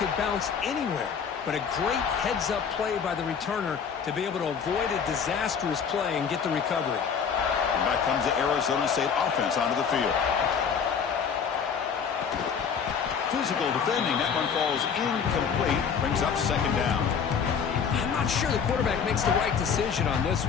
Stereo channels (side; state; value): right; quieter; 6.7 dB